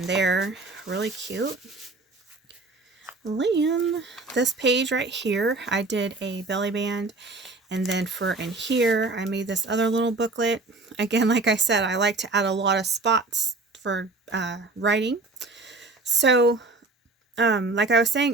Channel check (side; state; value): left; quieter; 3.4 dB